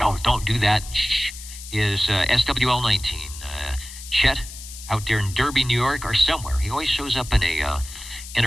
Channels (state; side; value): noise; left; hiss, 13 dB below the sound